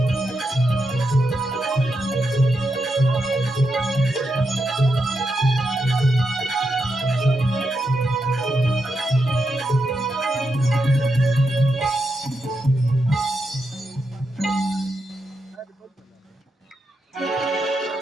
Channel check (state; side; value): normal; both; correlation 0.85